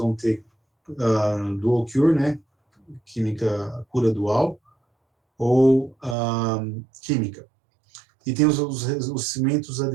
ter dual cure, né? Química, cura dual, ou química. E tem os cimentos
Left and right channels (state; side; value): drops out; left; at 6.2 s